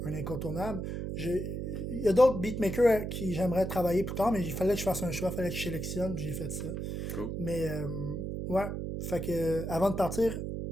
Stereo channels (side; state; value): right; noise; hum, 4 dB below the sound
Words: un incontournable. Il y a d'autres beatmakers qui j'aimerais travailler plus tard, mais il fallait que je fasse un choix, il fallait que je sélectionne, puis j'ai fait ça. Cool. Mais ouais, fait que avant de partir,